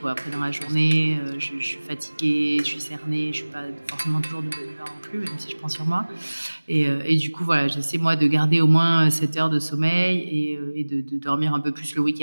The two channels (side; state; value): both; inverted; correlation -1.00